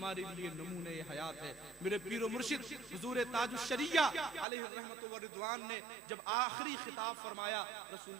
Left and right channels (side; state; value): left; drops out; at 4.5 s